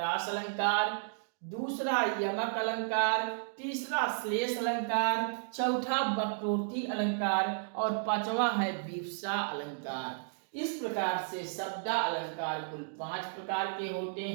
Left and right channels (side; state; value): left; silent; digital silence